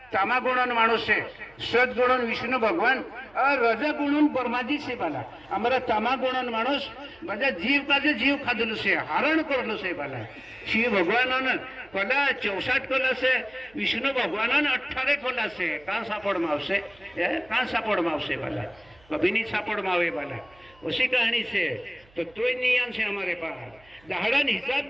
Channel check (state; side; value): noise; right; hum, 28 dB below the sound